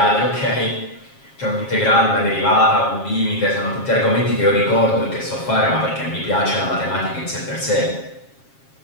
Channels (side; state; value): right; late; 7.4 ms